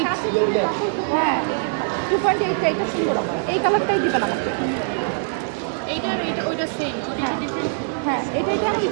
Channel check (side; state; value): left; silent; 64 dB below the other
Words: হ্যাঁ 2.8, এটা সুন্দর আপু, এই কালারটাই দিবেন আমাকে। এইটা ওইটা সেম। হ্যাঁ হ্যাঁ, এটা ওই